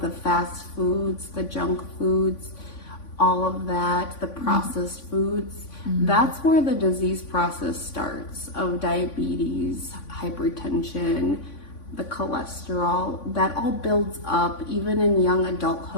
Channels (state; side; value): late; right; 3.5 ms